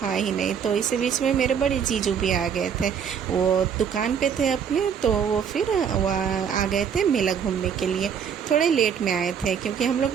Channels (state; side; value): quieter; left; 7.6 dB